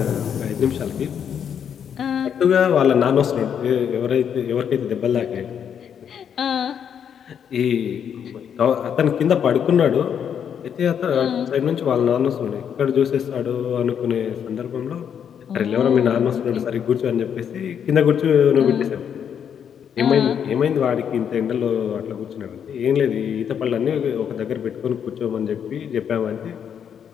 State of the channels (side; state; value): right; quieter; 8.2 dB